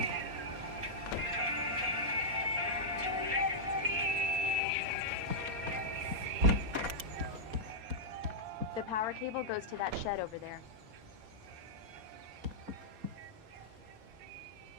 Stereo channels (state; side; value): late; left; 4.2 ms